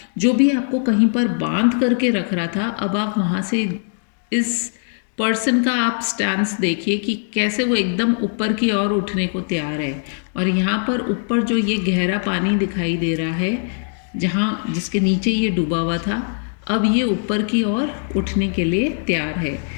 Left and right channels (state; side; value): silent; right; digital silence